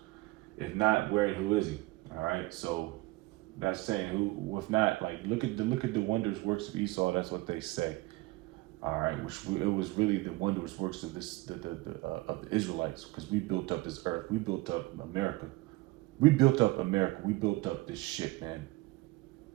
If not, where and who is he? All right, so that's saying who. If not, like look at the wondrous works of Esau. That's what they say. All right, which it was really the wondrous works of of the Israelites, because we built up this earth, we built up America, we built up this shit, man.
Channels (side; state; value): left; quieter; 21.4 dB